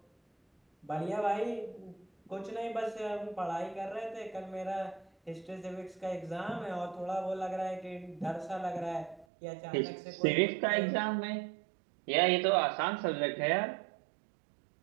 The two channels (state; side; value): drops out; left; at 9.2 s